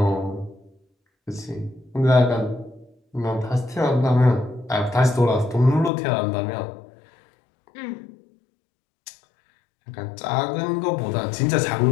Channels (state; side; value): drops out; right; at 5.9 s